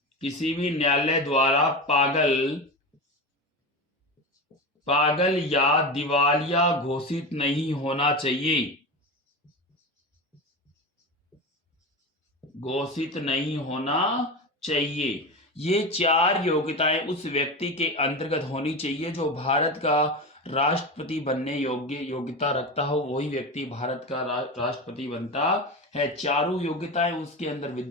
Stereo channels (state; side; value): normal; both; correlation 0.23